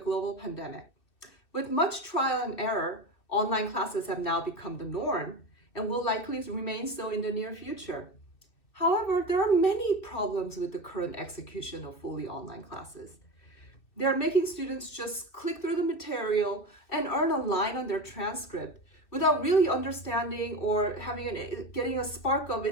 pandemic. With much trial and error, online classes have now become the norm and will likely remain so in the near future. However, there are many problems with the current execution of fully online classes. They are making students just click through the material and earn a line on their transcript without really understanding or getting a spark of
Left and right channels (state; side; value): late; right; 2.4 ms